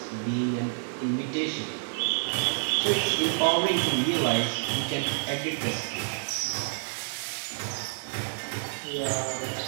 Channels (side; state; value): left; silent; 59 dB below the other